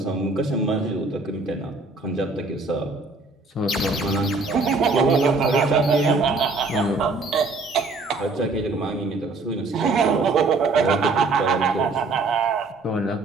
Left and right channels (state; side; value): quieter; left; 3.6 dB